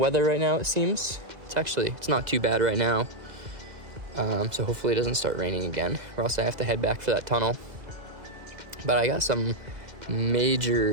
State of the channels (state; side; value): late; left; 2.2 ms